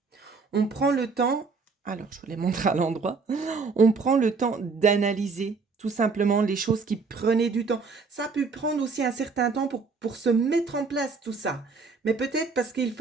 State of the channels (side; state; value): left; quieter; 4.6 dB